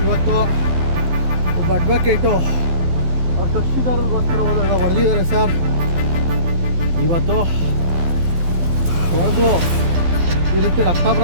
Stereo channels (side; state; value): left; late; 12 ms